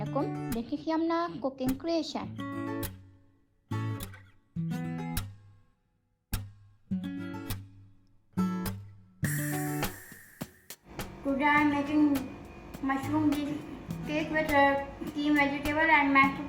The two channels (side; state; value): both; identical; correlation 1.00